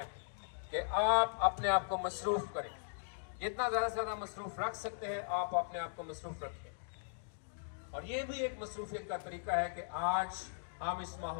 कि आप अपने आप को मसरूफ़ करें। जितना ज़्यादा से ज़्यादा मसरूफ़ रख सकते हैं आप अपने आप को मसरूफ़ रखें। और ये भी एक मसरूफियत का तरीका है कि आज हम इस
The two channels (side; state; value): right; silent; digital silence